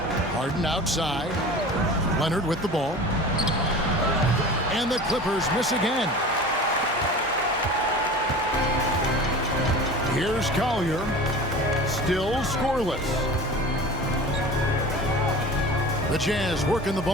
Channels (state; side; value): normal; both; correlation 0.37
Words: Harden outside. Leonard with the ball. And the Clippers miss again. Here's Collier. Still scoreless. The Jazz working the